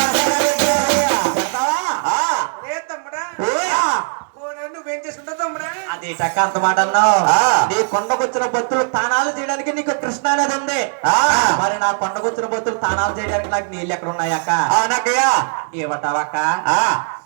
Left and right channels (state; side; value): silent; left; digital silence